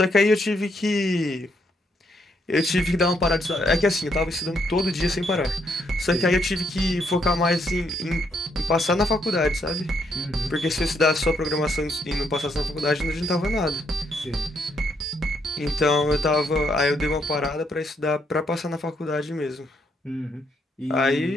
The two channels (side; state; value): both; normal; correlation 0.74